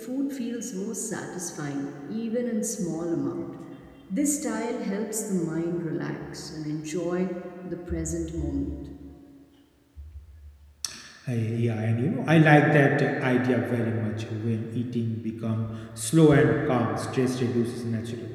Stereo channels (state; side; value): identical; both; correlation 1.00